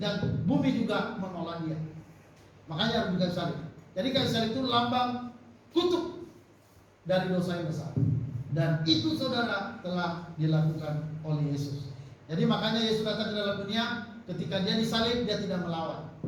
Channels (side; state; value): both; identical; correlation 1.00